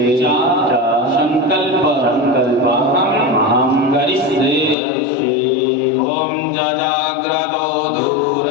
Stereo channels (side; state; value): right; drops out; at 4.8 s